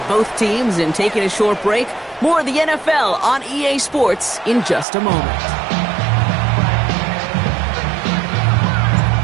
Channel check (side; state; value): left; drops out; at 4.9 s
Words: both teams in taking a short break. More of the NFL on EA Sports in just a moment.